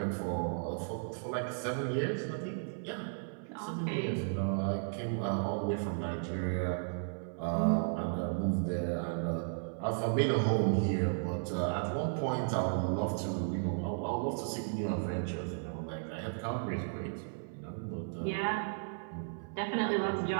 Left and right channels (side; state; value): left; silent; 55 dB below the other